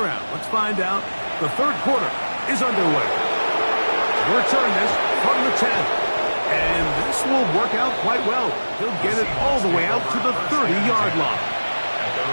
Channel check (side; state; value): both; inverted; correlation -1.00